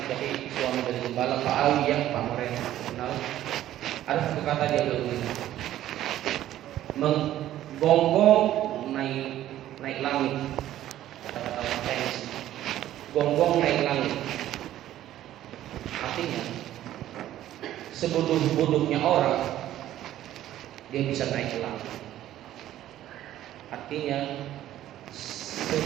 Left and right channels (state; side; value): quieter; left; 13.0 dB